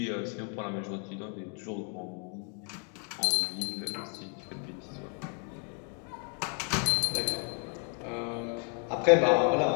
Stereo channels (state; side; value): quieter; right; 38.6 dB